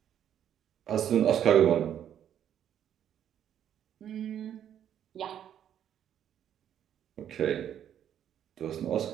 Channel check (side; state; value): left; quieter; 9.9 dB